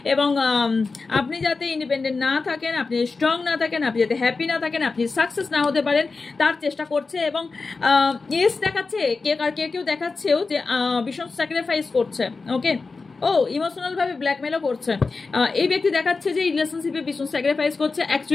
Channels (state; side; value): quieter; right; 4.1 dB